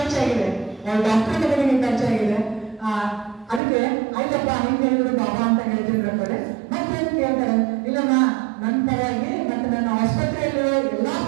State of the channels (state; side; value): drops out; left; at 3.6 s